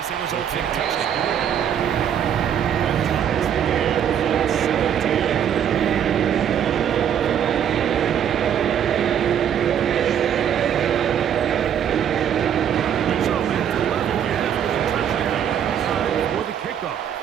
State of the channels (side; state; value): left; quieter; 9.0 dB